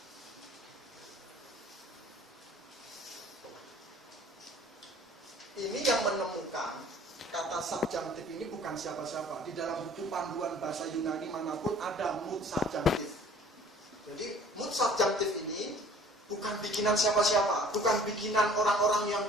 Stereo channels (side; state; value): both; normal; correlation 0.51